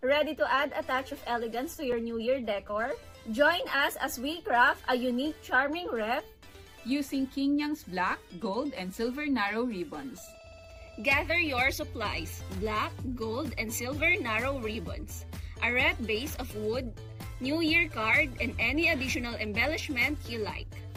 Ready to add a touch of elegance to your New Year decor? Join us as we craft a unique, charming wreath using King Yang's black, gold, and silver narrow ribbons. Gather your supplies, black, gold, and silver narrow ribbons, a wreath base of wood, New Year card, and any additional embellishment you like.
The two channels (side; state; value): both; identical; correlation 1.00